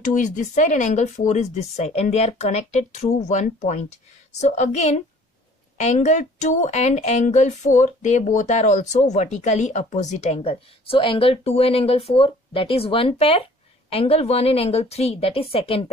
is this side and angle 4 is this side. And they are connected through one point. So again, angle 2 and angle 4, they both are also vertically opposite angle. So angle 2 and angle 4, that is one pair. Angle 1 and angle 3, that is second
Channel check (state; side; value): normal; both; correlation 0.53